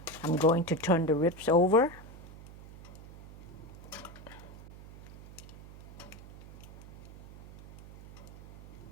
I'm going to turn the ribs over.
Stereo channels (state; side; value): noise; right; hum, 17 dB below the sound